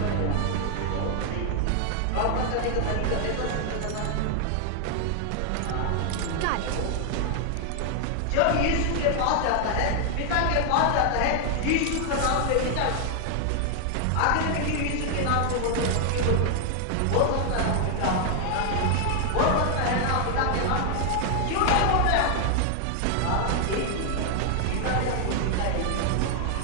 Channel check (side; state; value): both; different; correlation 0.00